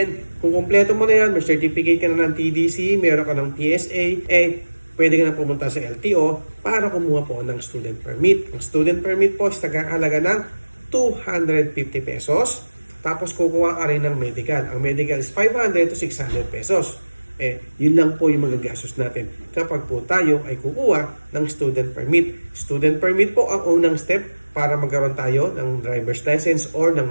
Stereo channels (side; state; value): both; inverted; correlation -1.00